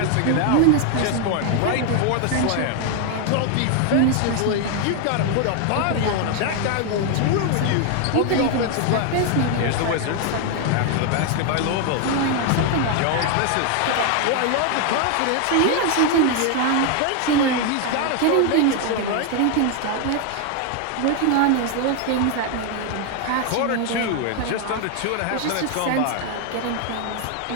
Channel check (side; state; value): both; different; correlation 0.01